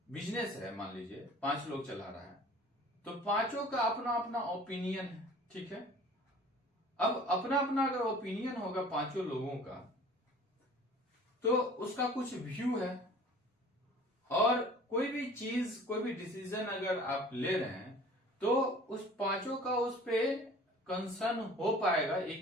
बिजनेस है, मान लीजिए 5 लोग चला रहा है, तो पांचों का अपना अपना ओपिनियन है। ठीक है, अब अपना अपना अगर ओपिनियन होगा पांचों लोगों का, तो उसका कुछ व्यू है, और कोई भी चीज, कोई भी डिसीजन अगर आप ले रहे हैं तो उस पांचों का उस पे कंसर्न हो पाएगा,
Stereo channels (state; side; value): normal; both; correlation 0.47